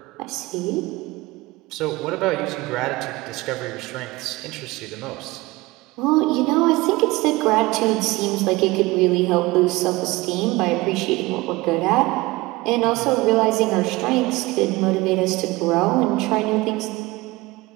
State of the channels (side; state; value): left; quieter; 21.2 dB